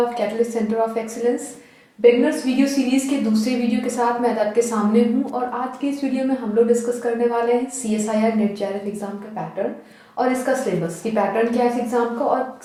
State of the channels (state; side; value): identical; both; correlation 1.00